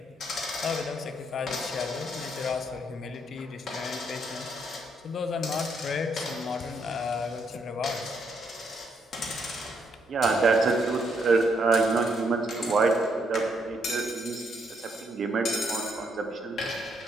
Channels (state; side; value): normal; both; correlation 0.74